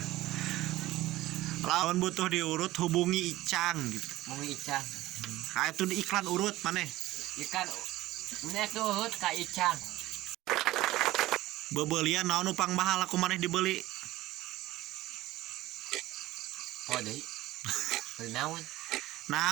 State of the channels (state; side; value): quieter; left; 16.9 dB